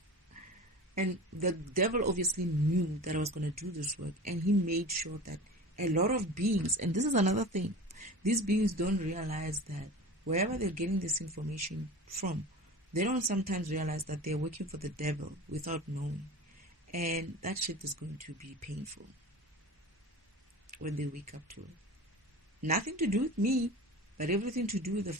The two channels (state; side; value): normal; both; correlation 0.34